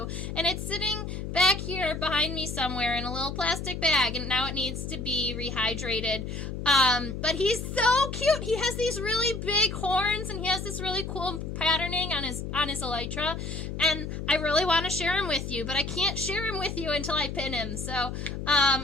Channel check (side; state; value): left; noise; hum, 6 dB below the sound